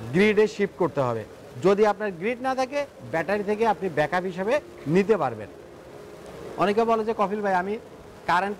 গ্রিডে শিফট করতে হবে। যদি আপনার গ্রিড না থাকে, ব্যাটারি থেকে আপনি ব্যাকআপ হিসেবে নিতে পারবেন। অনেকে বলে যে কফিল ভাই আমি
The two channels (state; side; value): identical; both; correlation 1.00